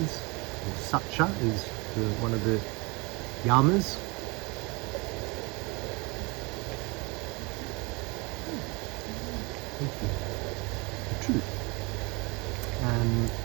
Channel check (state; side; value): quieter; left; 27.3 dB